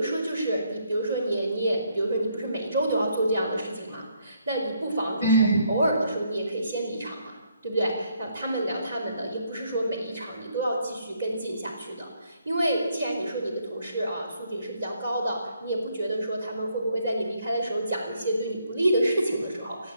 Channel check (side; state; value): both; inverted; correlation -0.72